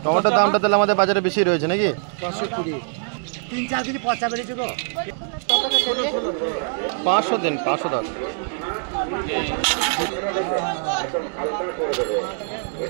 টমেটোর দামটা তাহলে আমাদের বাজারে বেশি রয়েছে নাকি? 500 দিন, 500 দাও।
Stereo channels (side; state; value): left; silent; 59 dB below the other